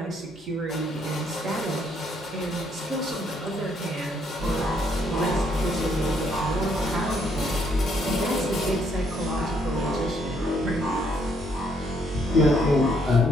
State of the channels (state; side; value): normal; both; correlation 0.70